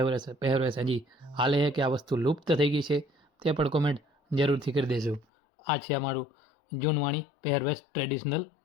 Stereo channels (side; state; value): right; drops out; at 5.2 s